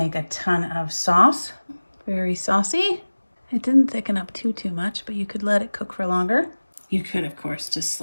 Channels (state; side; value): inverted; both; correlation -1.00